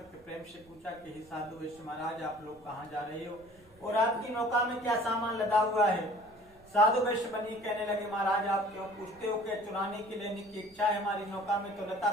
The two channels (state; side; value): noise; right; rumble, 28 dB below the sound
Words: प्रेम से पूछा कि हे साधु वेश्य महाराज, आप लोग कहाँ जा रहे हो और आपकी नौका में क्या सामान लदा हुआ है। साधु वैश्य बनी कहने लगे, महाराज आप क्यों पूछते हो, क्या चुराने की लेने की इच्छा है। हमारी नौका में तो लता